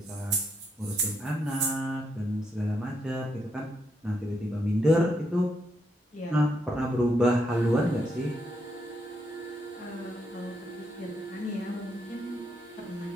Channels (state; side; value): normal; both; correlation 0.79